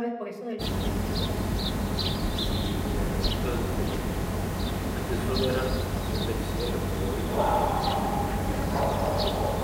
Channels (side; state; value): both; identical; correlation 1.00